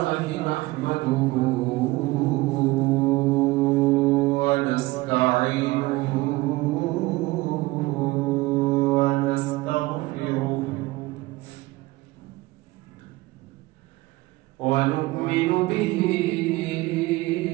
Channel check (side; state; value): left; quieter; 20.4 dB